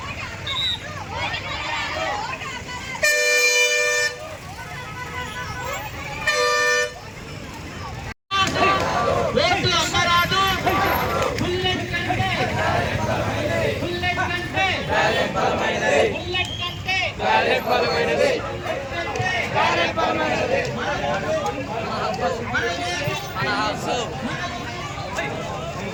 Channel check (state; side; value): identical; both; correlation 1.00